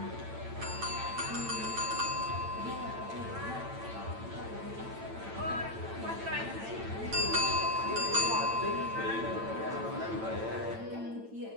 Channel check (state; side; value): late; left; 8.9 ms